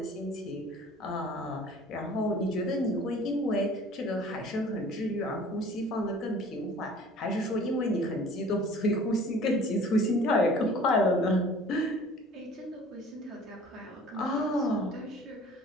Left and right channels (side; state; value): both; normal; correlation 0.49